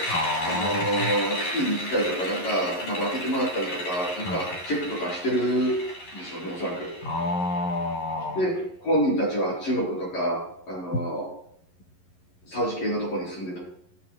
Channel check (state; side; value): late; right; 11 ms